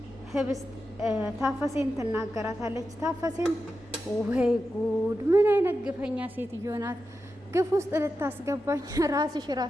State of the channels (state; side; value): normal; both; correlation 0.90